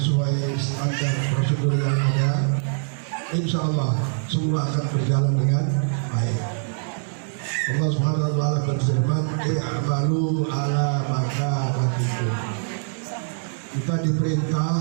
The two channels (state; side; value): silent; left; 63 dB below the other